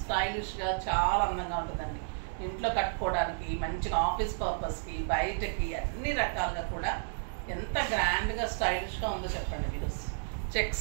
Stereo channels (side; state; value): left; silent; digital silence